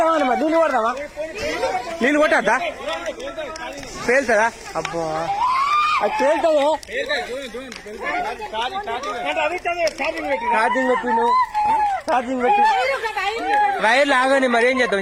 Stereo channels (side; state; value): both; identical; correlation 1.00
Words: అన్నమా నీళ్ళు కొడదామా నీళ్ళు కొట్టద్దా పేలుతుందా అబ్బా అది పేలుతుంది ఛార్జింగ్ పెట్టిను ఛార్జింగ్ పెట్టి వైర్లు ఆగని మరి ఏం